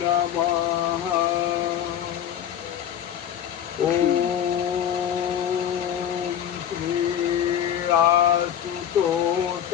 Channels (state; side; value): quieter; right; 9.6 dB